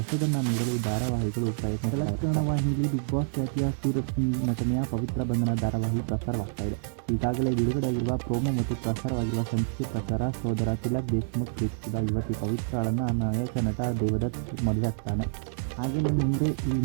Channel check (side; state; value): left; silent; digital silence